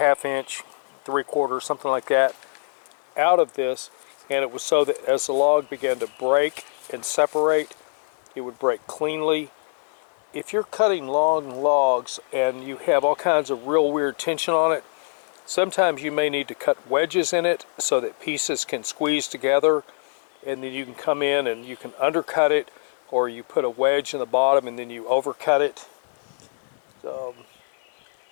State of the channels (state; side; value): silent; right; 63 dB below the other